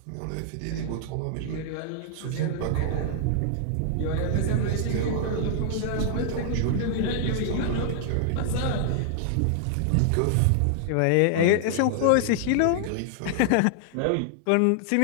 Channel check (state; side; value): different; both; correlation -0.01